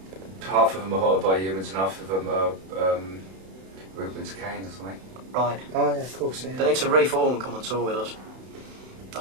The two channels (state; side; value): late; left; 31 ms